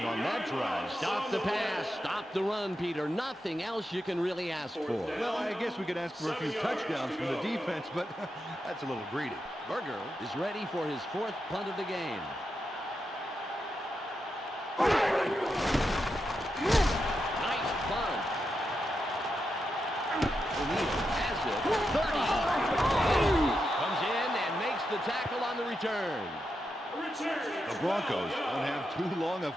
on that drive. Stop the pass. Stop the run, Peter. Nothing else you can really ask for. Well, I guess we could ask for a few touchdowns from the defense, but that's a little greedy. Berger is ready for his 4th punt of the game. Nice punt. O'Neal has it. 30. Comes in and makes the tackle on the return. The Broncos don't have too long a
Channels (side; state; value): both; normal; correlation 0.86